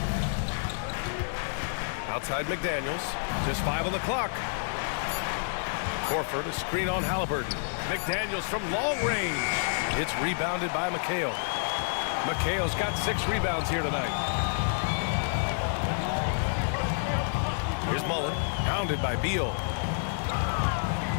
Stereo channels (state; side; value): silent; right; digital silence